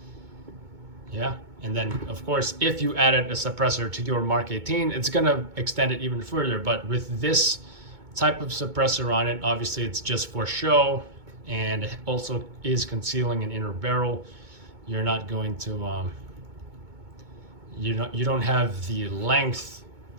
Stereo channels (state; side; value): late; left; 2.2 ms